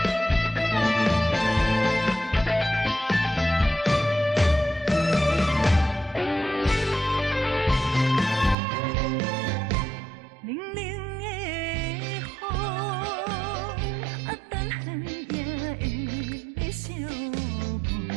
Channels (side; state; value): left; drops out; at 8.6 s